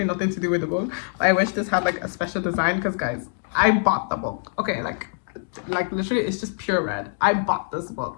nothing to do with the book, but I wish this had like a special design, because guys, I bought the book, okay, like literally it's just pure red. I bought this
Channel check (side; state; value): right; silent; digital silence